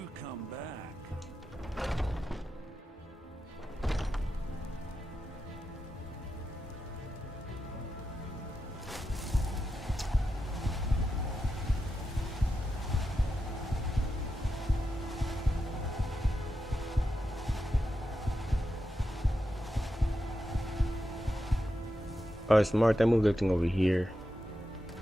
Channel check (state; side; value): normal; both; correlation 0.88